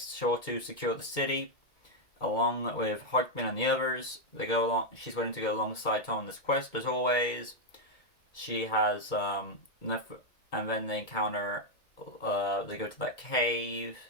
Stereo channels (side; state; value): right; late; 2.2 ms